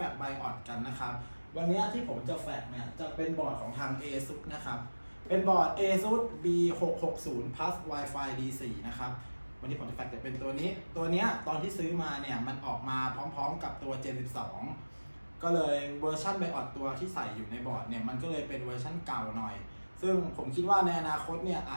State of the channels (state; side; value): inverted; both; correlation -1.00